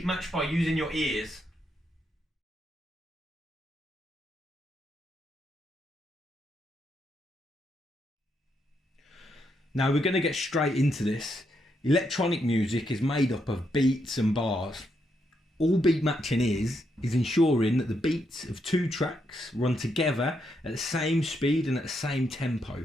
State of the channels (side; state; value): both; normal; correlation 0.79